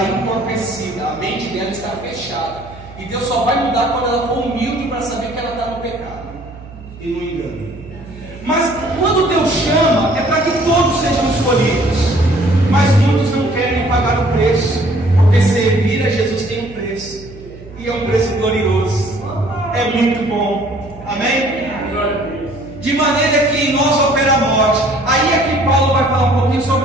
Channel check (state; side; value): noise; right; hum, 18 dB below the sound